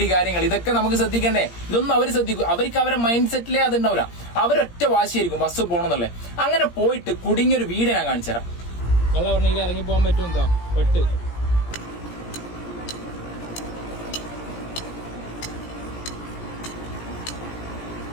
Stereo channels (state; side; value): late; right; 17 ms